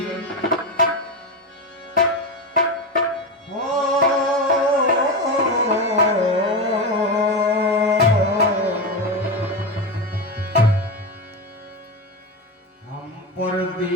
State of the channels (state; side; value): normal; both; correlation 0.16